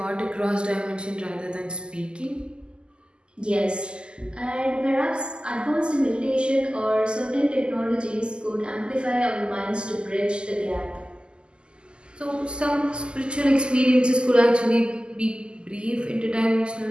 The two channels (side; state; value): left; late; 0.049 ms